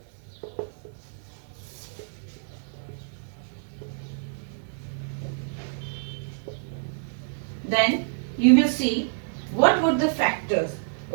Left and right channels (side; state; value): left; silent; digital silence